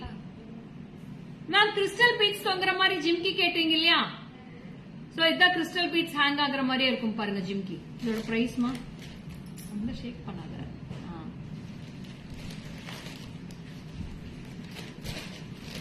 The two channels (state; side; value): identical; both; correlation 1.00